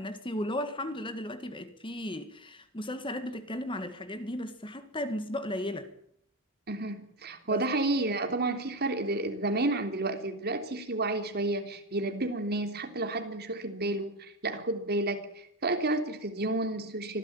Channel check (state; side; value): normal; both; correlation 0.18